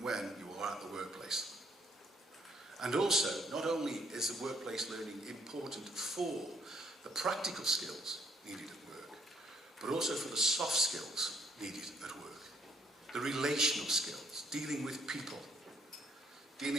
when you are at the workplace. And also, not only is the workplace learning important for the practical skills needed at work, but also for the soft skills needed at work. The relational skills, dealing with people,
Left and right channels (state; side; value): normal; both; correlation 0.68